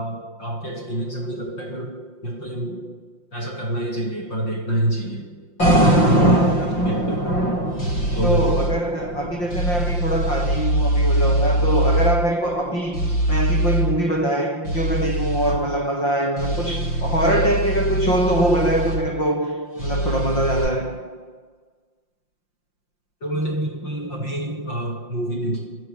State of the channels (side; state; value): right; late; 5.7 ms